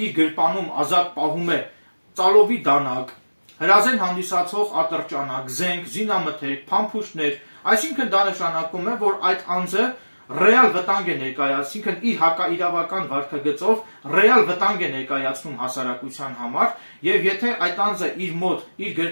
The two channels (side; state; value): both; inverted; correlation -1.00